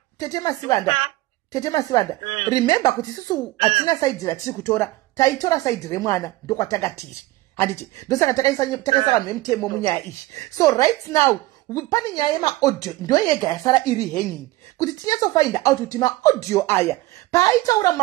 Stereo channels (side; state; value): left; quieter; 18.6 dB